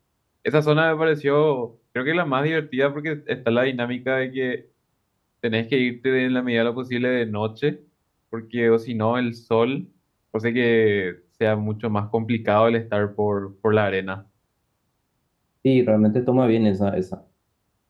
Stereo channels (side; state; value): both; identical; correlation 1.00